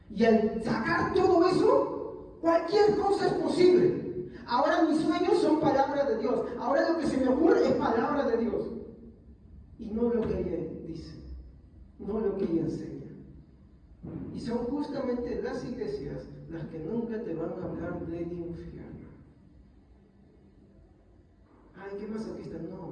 Y al sacar todo eso, cualquier cosa es posible. Ahora mis sueños son palabras de Dios. Ahora lo que se me ocurre es palabra de Dios. Y no lo que ella dice, no lo que ella enseña. Y son justamente las iglesias las que nunca te van a hablar del infierno. Ay, qué masoquista,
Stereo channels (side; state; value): both; identical; correlation 1.00